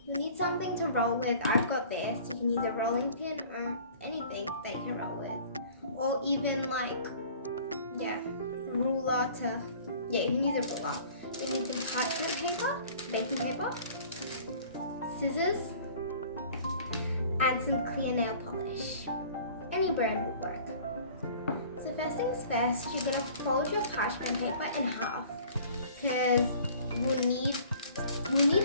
You need something to roll with. I've got this. You can use a rolling pin or anything that you can roll with. Or even ruler to, you can use a ruler. You need some parchment paper, baking paper, scissors, and some clear nail polish. Any brand will work. So first things first, you're gonna fold your parchment paper in half because we'll need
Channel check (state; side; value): inverted; both; correlation -0.49